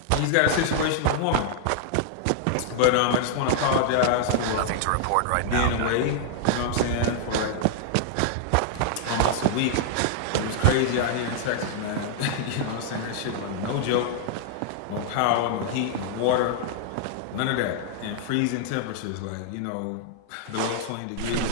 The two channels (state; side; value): different; both; correlation -0.01